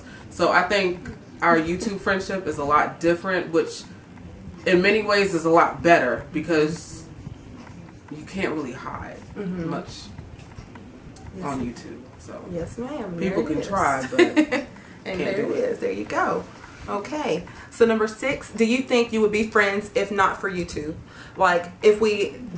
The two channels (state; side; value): identical; both; correlation 1.00